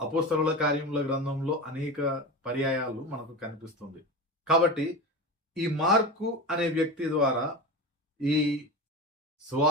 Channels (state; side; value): normal; both; correlation 0.25